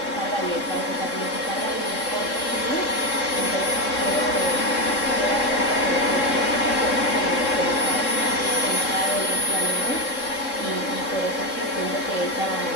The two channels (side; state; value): right; late; 3.7 ms